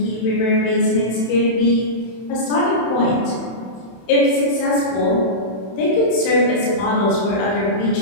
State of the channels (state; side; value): late; right; 31 ms